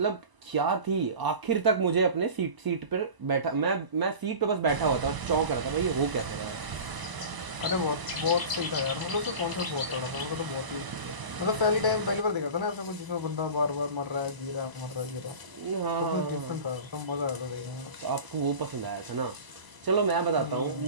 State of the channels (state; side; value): late; left; 1.0 ms